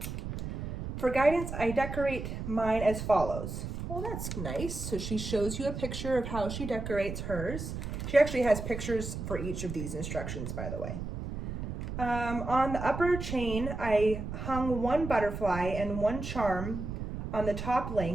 For guidance, I decorate mine as follows. Well, that's nice. So she shows you a picture of how she decorates hers. She actually has pictures for each of these instructions, by the way. On the upper chain, I hung 1 butterfly and 1 charm on the top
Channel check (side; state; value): right; noise; rumble, 6 dB below the sound